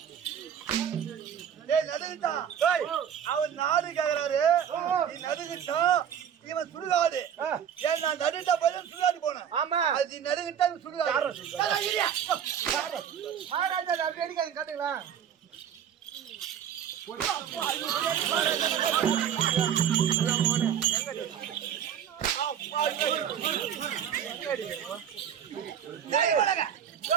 நடுகிட்டா அவன் நாடு கேக்குறாரு நீ நடுகிட்டா இவன் சுடுகாடு ஏன் நான் நடுகிட்டா போய் சுடுகாடு போனேன் ஆமா அது நடுகிட்டா சுடுகாடு மகாராஜா அப்படி அடிக்காது காட்டுங்களேன்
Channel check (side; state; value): left; quieter; 8.9 dB